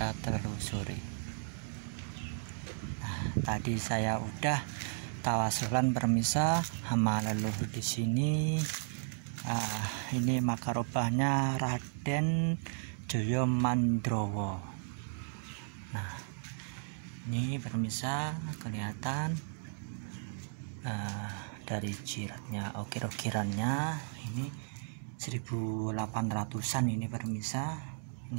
telusuri. Nah, tadi saya udah tawasulan permisa sama leluhur di sini. Ini makarobahnya Raden Joyo Mandrowo. Nah, ini permisa kelihatan dari jiratnya, ukir-ukirannya ini 1800-an ini permisa.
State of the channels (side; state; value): left; silent; digital silence